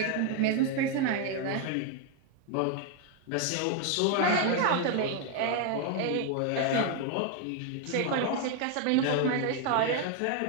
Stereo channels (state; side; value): different; both; correlation 0.01